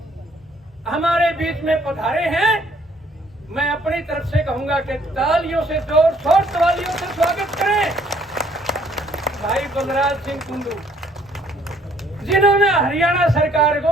हमारे बीच में पधारे हैं। मैं अपनी तरफ से कहूंगा कि तालियों से, जोर शोर तालियों से स्वागत करें भाई बलराज सिंह कुंडू, जिन्होंने हरियाणा सरकार को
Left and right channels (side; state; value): both; normal; correlation 0.63